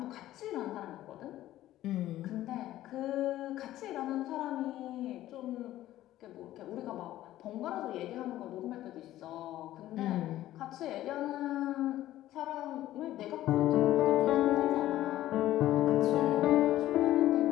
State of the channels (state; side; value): quieter; right; 14.2 dB